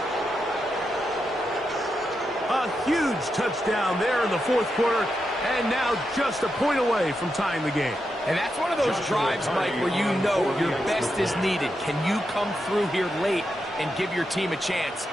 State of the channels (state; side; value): normal; both; correlation 0.86